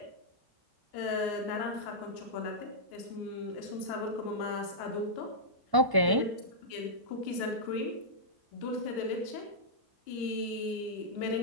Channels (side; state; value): left; late; 1.1 ms